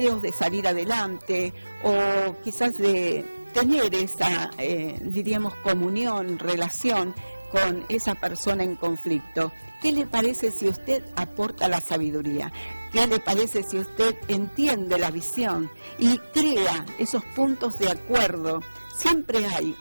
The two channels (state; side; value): inverted; both; correlation -1.00